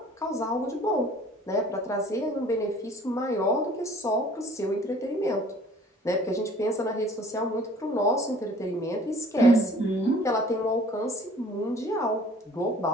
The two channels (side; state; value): both; normal; correlation 0.52